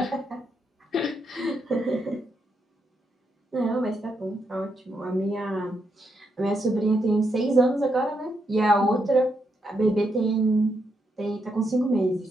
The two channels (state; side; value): normal; both; correlation 0.80